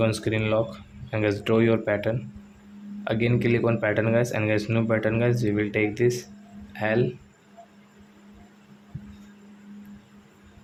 screen lock and guys draw your pattern. Again click on pattern guys, and guys new pattern guys, we will take this L.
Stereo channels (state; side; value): identical; both; correlation 1.00